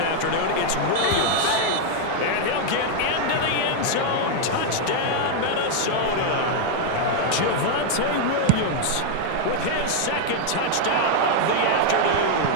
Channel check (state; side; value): different; both; correlation 0.00